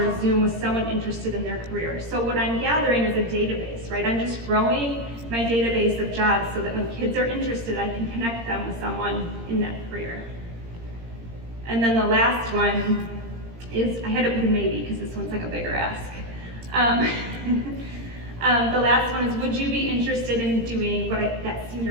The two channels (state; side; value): late; left; 17 ms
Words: a Zoom with someone interested in their career. So what I'm gathering is a database, right? I'm just growing my database of jobs so that when kids are interested, I can connect them with someone in that career. And then the last one is, I had to put a maybe because this one's like a bigger ask. The last one is, would you be interested in doing that